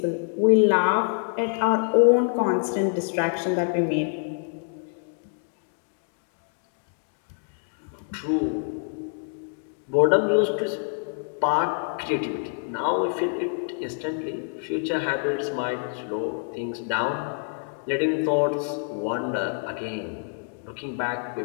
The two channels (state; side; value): silent; right; 61 dB below the other